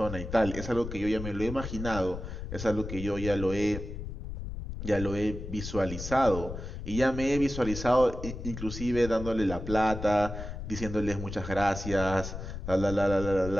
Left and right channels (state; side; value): noise; left; rumble, 8 dB below the sound